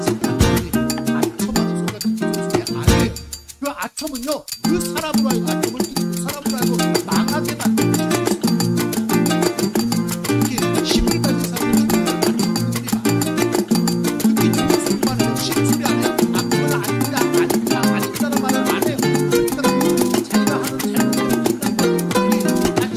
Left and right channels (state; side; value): identical; both; correlation 1.00